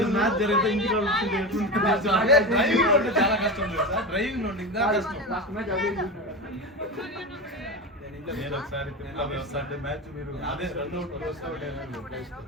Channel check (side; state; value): both; normal; correlation 0.22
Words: మ్యాచ్ జరిగితే ఇంటికి డ్రైవింగ్ ఉంటే చాలా కష్టం తెలుసా. డ్రైవింగ్ ఉంటే ఇంకా కష్టం. నేను ఒకసారి తిరుమల వస్తా అంటే మ్యాచ్ మీరు అదే రన్అట్